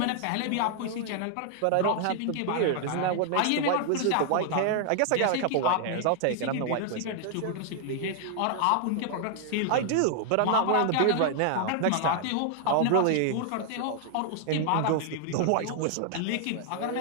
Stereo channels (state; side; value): different; both; correlation 0.00